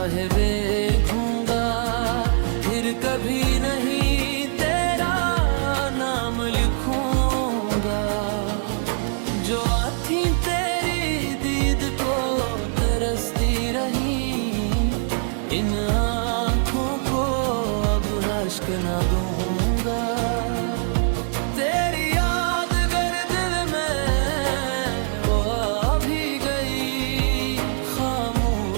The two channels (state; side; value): silent; left; 63 dB below the other